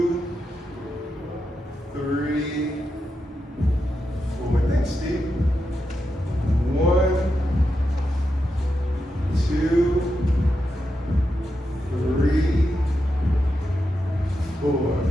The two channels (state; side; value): normal; both; correlation 0.87